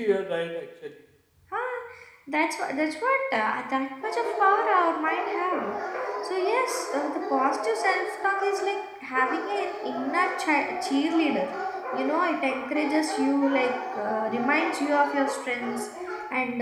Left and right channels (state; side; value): identical; both; correlation 1.00